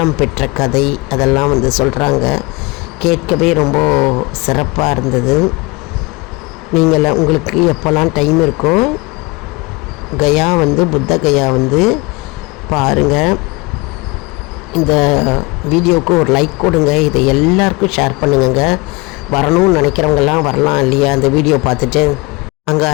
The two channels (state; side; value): quieter; right; 25.4 dB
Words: பெற்ற கதை அதெல்லாம் வந்து சொல்கிறாங்க. கேட்கவே ரொம்ப சிறப்பாக இருந்தது. நீங்கள் உங்களுக்கு எப்போல்லாம் டைம் இருக்கோ கயா வந்து புத்த கயா வந்து பாருங்கள். இந்த வீடியோவுக்கு ஒரு லைக் கொடுங்க. இதை எல்லாருக்கும் ஷேர் பண்ணுங்க. வரணும்னு நினைக்கிறவங்கெல்லாம் வரலாம் இல்லையா அந்த வீடியோ பார்த்துட்டு. அங்கே